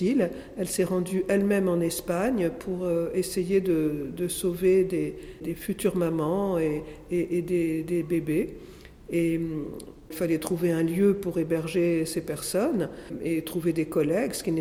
Elle s'est rendue elle-même en Espagne pour essayer de sauver des futures mamans et des bébés. Et il fallait trouver un lieu pour héberger ces personnes et trouver des collègues, ce qui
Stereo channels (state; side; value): identical; both; correlation 1.00